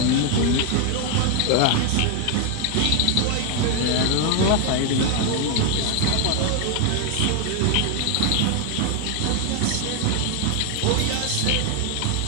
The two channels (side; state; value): both; different; correlation 0.01